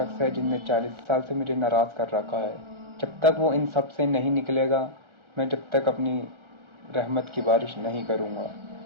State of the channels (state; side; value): late; left; 1.4 ms